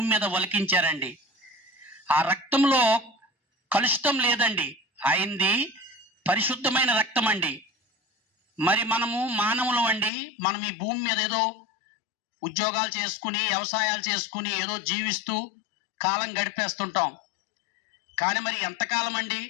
మీద ఒలికించారండి. ఆ రక్తంలో కలుషితం లేదండి. ఆయనది పరిశుద్ధమైన రక్తం అండి. మరి మనము మానవులం అండి. మనం ఈ భూమి మీద ఏదో ఉద్యోగాలు చేసుకుని వ్యవసాయాలు చేసుకుని ఏదో జీవిస్తూ కాలం గడిపేస్తుంటాం. కానీ మరి ఎంతకాలం అండి?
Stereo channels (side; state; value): right; drops out; at 10.1 s